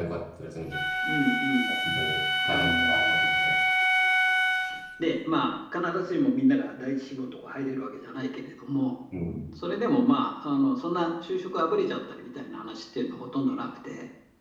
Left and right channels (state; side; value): identical; both; correlation 1.00